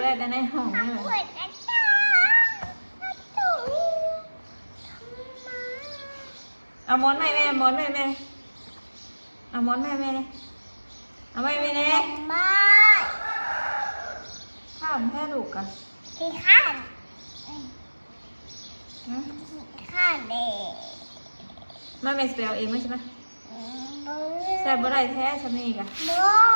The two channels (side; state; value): both; inverted; correlation -1.00